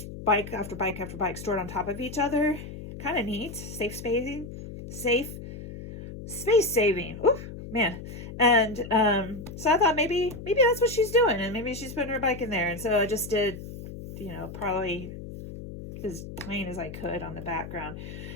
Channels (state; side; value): noise; left; hum, 11 dB below the sound